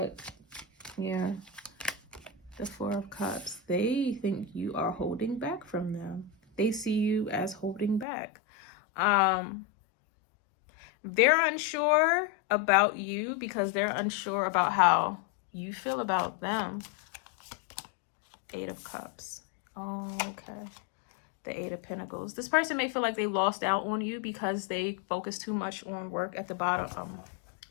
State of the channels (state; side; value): drops out; right; at 8.1 s